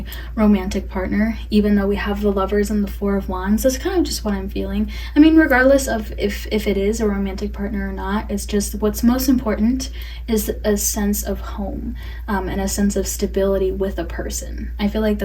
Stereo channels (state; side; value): identical; both; correlation 1.00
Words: romantic partner, even though we have the Lovers and the Four of Wands. That's kind of just what I'm feeling. I mean, regardless of if it is a romantic partner or not, it's just what's most important is a sense of home, and a sense of stability with a person. I feel like